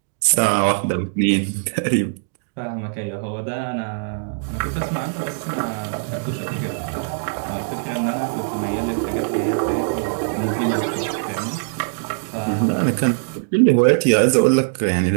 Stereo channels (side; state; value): left; silent; digital silence